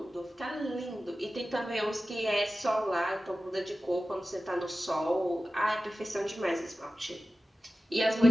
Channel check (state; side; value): normal; both; correlation 0.95